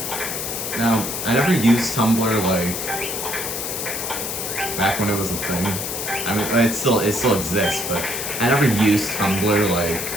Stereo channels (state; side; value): noise; left; hiss, 4 dB below the sound